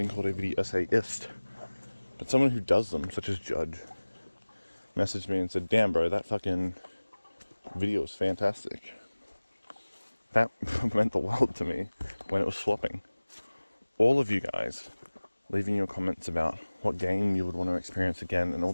called a video essayist, but someone who does them, such as Judge, messaged me and said, damn bro, that fucking video is fantastic. That meant the world to me when it was flopping. All of you guys leaving your comments about what game you would want to experience again, and all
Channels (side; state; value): both; inverted; correlation -1.00